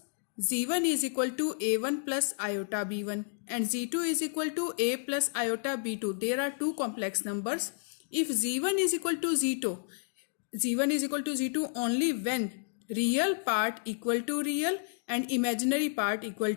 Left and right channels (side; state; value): right; silent; digital silence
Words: z1 is equal to a1 plus iota b1 and z2 is equal to a plus iota b2. There are two complex numbers. If z1 is equal to z1 is equal to z2 only when real part equal to real and imaginary part equal